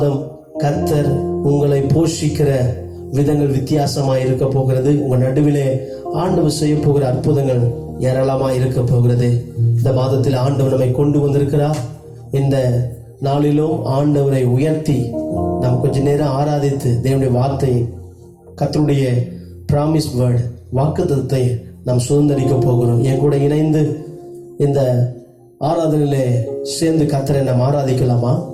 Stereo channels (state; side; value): identical; both; correlation 1.00